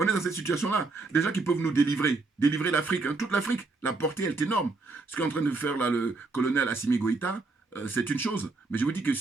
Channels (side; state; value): left; quieter; 3.7 dB